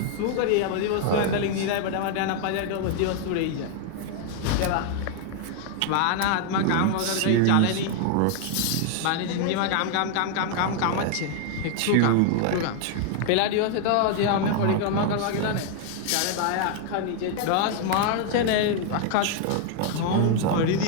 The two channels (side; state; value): both; different; correlation 0.00